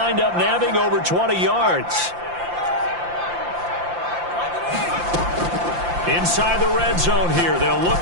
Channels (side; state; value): left; late; 5.8 ms